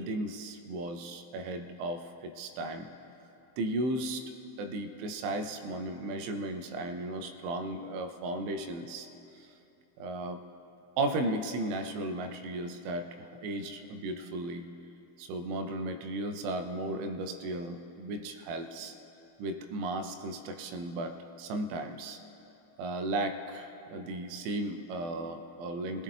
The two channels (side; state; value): left; late; 24 ms